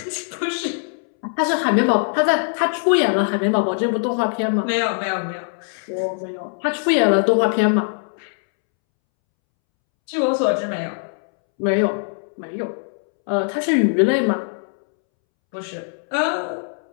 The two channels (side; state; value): right; silent; 65 dB below the other